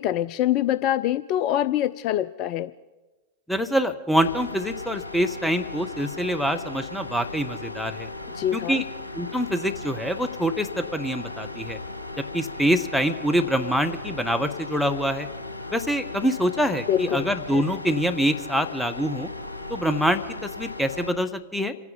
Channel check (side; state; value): both; normal; correlation 0.58